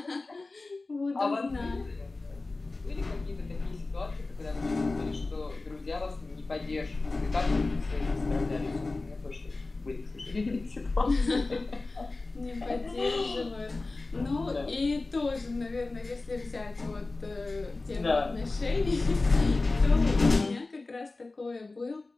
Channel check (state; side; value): quieter; right; 3.4 dB